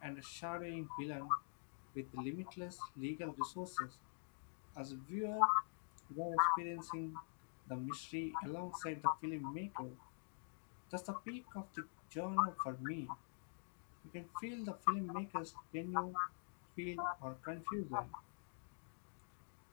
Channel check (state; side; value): silent; right; digital silence